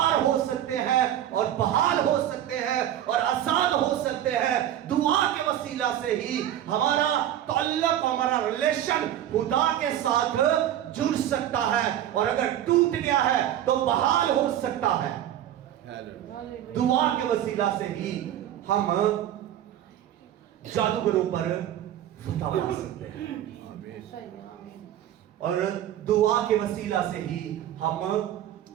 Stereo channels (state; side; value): quieter; left; 11.5 dB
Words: ہو سکتے ہیں اور بحال ہو سکتے ہیں اور آزاد ہو سکتے ہیں. دعا کے وسیلہ سے ہی ہمارا تعلق, ہمارا ریلیشن خدا کے ساتھ جڑ سکتا ہے, اور اگر ٹوٹ گیا ہے تو بحال ہو سکتا ہے. دعا کے وسیلہ سے ہی ہم جادوگروں پر فتح پا سکتے ہیں, اور دعا کے وسیلہ سے ہی ہم